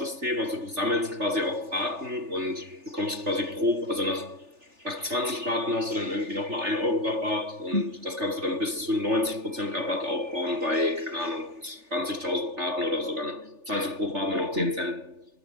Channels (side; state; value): left; late; 3.4 ms